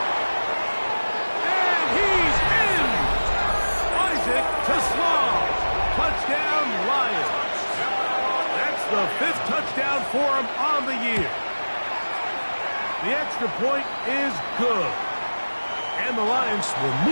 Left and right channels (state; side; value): inverted; both; correlation -1.00